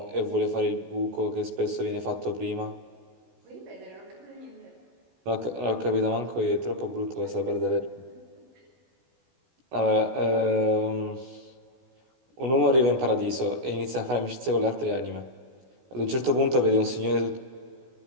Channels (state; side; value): late; left; 16 ms